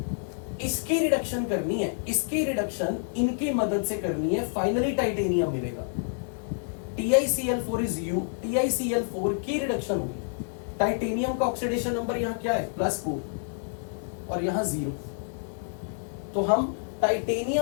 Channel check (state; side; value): silent; right; 56 dB below the other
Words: इसकी रिडक्शन करनी है, इसकी रिडक्शन इनकी मदद से करनी है, फाइनली टाइटेनियम मिलेगा। TiCl4 इज U, TiCl4 की रिडक्शन होगी। टाइटेनियम का ऑक्सीडेशन नंबर यहां क्या है? +4 और यहां 0। तो हम